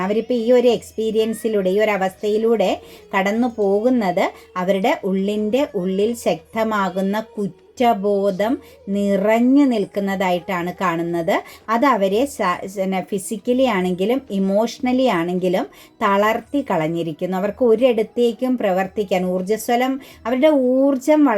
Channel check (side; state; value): both; identical; correlation 1.00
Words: അവരിപ്പോൾ ഈ ഒരു എക്സ്പീരിയൻസിലൂടെ, ഈ ഒരു അവസ്ഥയിലൂടെ കടന്നു പോകുന്നത് അവരുടെ ഉള്ളിൽ ശക്തമാകുന്ന കുറ്റബോധം നിറഞ്ഞു നിൽക്കുന്നതായിട്ടാണ് കാണുന്നത്. അത് അവരെ ഫിസിക്കലി ആണെങ്കിലും ഇമോഷണലി ആണെങ്കിലും തളർത്തി കളഞ്ഞിരിക്കുന്നു. അവർക്ക് ഒരിടത്തേക്കും പ്രവർത്തിക്കാൻ അവരുടെ ഊർജം